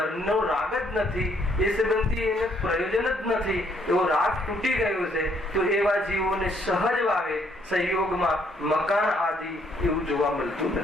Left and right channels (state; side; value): normal; both; correlation 0.68